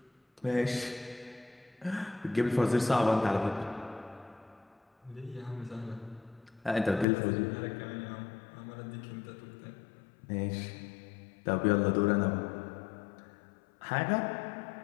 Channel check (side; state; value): right; drops out; at 7.1 s